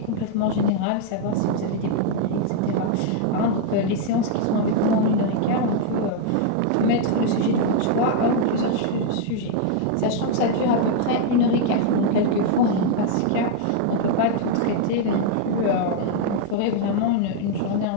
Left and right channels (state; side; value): different; both; correlation 0.00